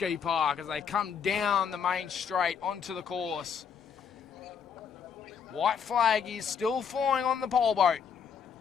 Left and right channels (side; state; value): right; quieter; 6.9 dB